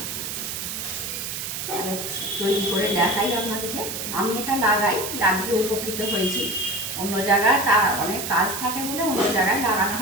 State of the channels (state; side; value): noise; right; hiss, 5 dB below the sound